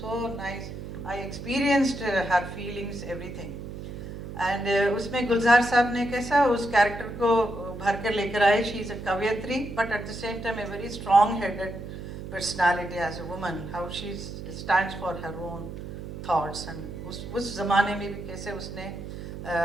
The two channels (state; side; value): noise; right; hum, 9 dB below the sound